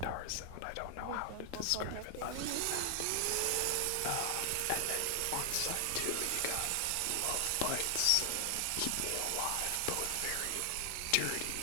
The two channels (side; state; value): both; different; correlation 0.00